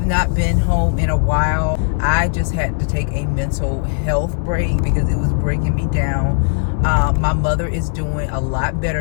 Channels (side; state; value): right; silent; digital silence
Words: not been home in a while. I just had to take a mental health break because it was breaking me down. My mother is doing a lot